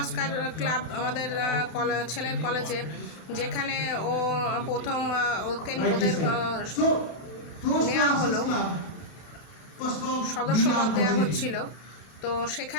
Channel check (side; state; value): right; late; 32 ms